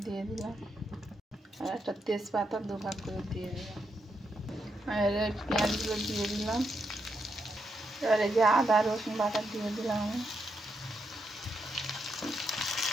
দিয়ে দিলাম, আর একটা তেজপাতা 2 ভাগ করে দিয়ে দিলাম। আর পেঁয়াজগুলো দিয়ে দিলাম। এবার এই যে আদা রসুন বাটা দিয়ে দিলাম আমি।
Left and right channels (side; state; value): both; normal; correlation 0.81